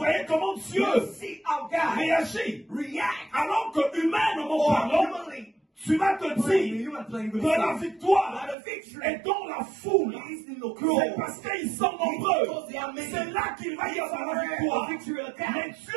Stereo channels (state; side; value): drops out; left; at 8.6 s